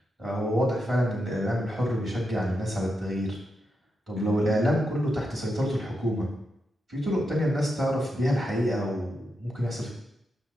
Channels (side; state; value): both; normal; correlation 0.85